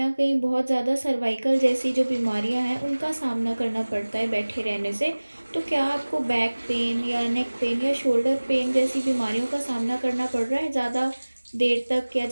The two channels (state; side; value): inverted; both; correlation -1.00